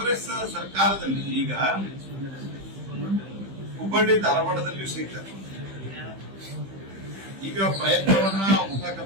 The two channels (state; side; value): late; left; 15 ms